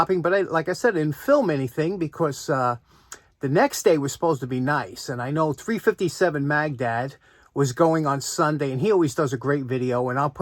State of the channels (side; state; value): both; identical; correlation 1.00